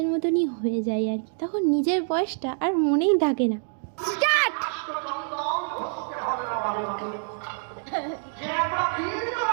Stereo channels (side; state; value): left; silent; 61 dB below the other